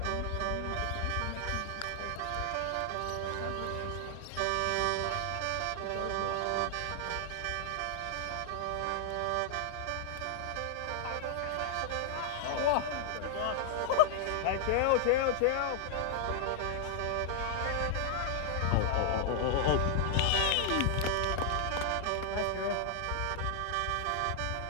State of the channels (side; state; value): both; different; correlation 0.00